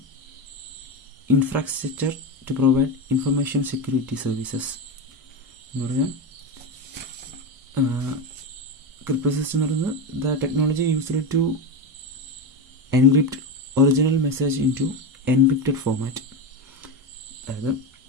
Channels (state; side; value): normal; both; correlation 0.16